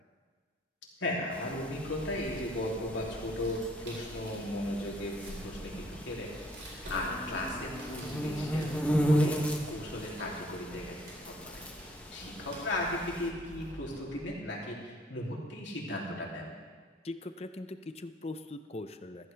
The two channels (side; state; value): both; normal; correlation 0.60